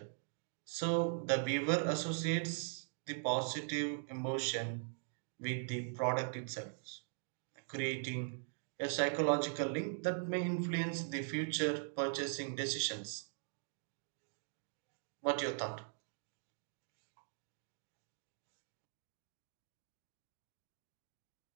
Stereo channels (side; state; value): left; silent; digital silence